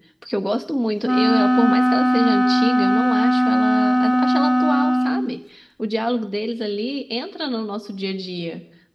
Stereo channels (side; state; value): both; identical; correlation 1.00